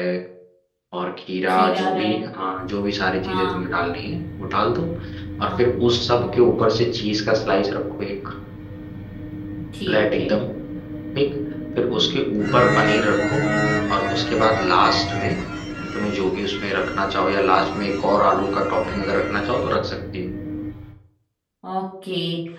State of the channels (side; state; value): both; identical; correlation 1.00